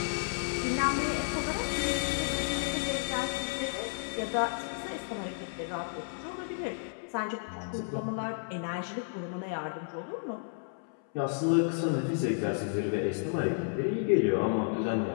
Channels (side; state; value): right; silent; 56 dB below the other